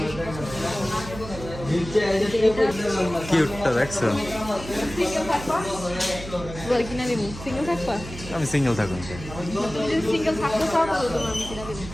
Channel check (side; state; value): right; noise; hum, 12 dB below the sound